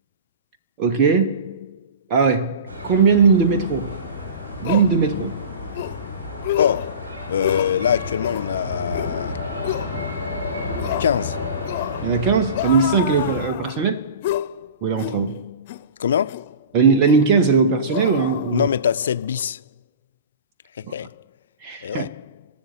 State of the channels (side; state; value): both; inverted; correlation -0.35